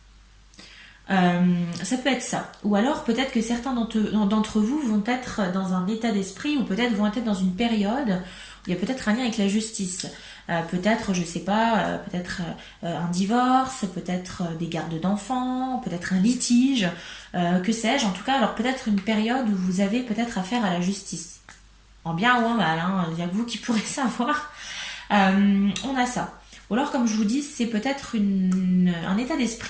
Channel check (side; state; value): both; identical; correlation 1.00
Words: Ça peut être ça. Ou alors peut-être que certains d'entre vous vont être dans un état d'esprit ou peut-être vont être dans une période où il y a peut-être un lien avec la justice. Peut-être, je sais pas, peut-être un divorce, peut-être des gardes d'enfants, peut-être un litige, que sais-je. En tout cas, alors peut-être une période où vous avez peut-être affaire à la justice. En bien ou en mal, hein, il n'y a que vous qui pourrez savoir. On a ça. Ou alors, comme je vous dis, c'est peut-être un état